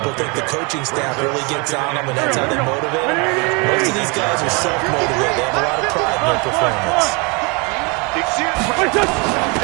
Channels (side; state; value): left; quieter; 30.3 dB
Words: think the coaching staff really gets on them, and that's how they motivate them. Most of these guys are self-motivated. They have a lot of pride in their performance.